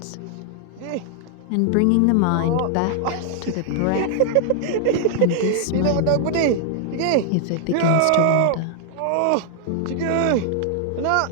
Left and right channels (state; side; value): different; both; correlation 0.00